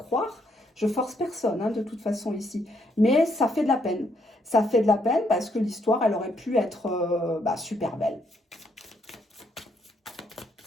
Je force personne, hein, de toute façon, ici. Mais ça fait de la peine. Ça fait de la peine parce que l'histoire, elle aurait pu être super belle.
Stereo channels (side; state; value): both; normal; correlation 0.73